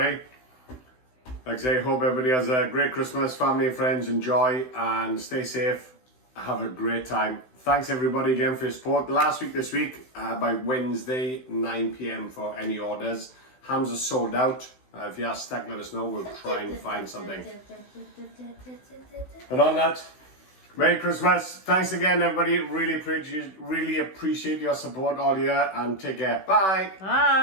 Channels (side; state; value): right; late; 16 ms